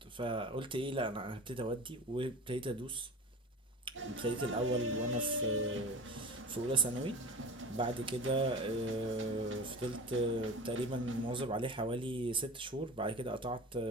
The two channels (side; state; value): both; normal; correlation 0.33